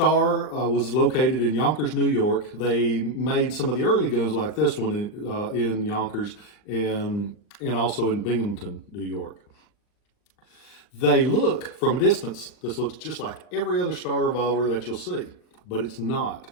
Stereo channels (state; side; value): late; right; 39 ms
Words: was located in Yonkers, New York. They made some of the early guns like this one in Yonkers and also in Binghamton, New York. They look, from a distance, this looks just like every other Starr revolver that you'll see, but it's not.